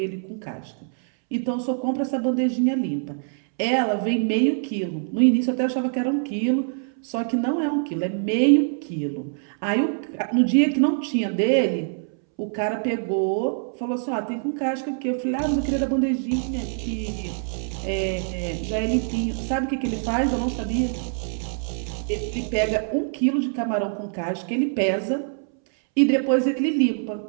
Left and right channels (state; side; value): silent; left; 62 dB below the other